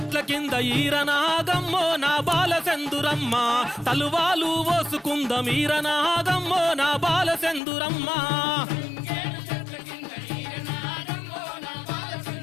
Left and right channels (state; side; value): drops out; right; at 7.6 s